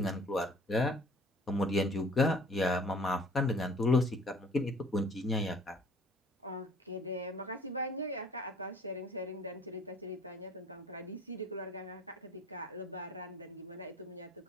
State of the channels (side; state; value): both; normal; correlation 0.53